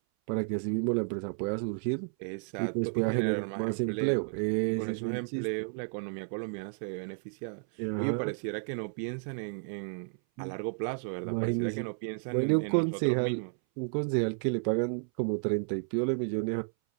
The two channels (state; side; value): silent; left; 56 dB below the other